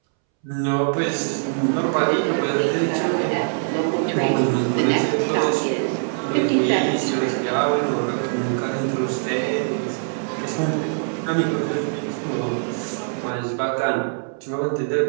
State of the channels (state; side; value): silent; left; 64 dB below the other